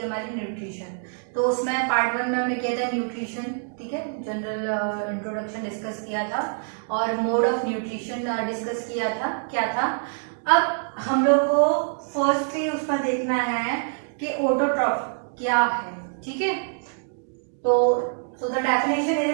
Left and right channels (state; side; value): silent; left; digital silence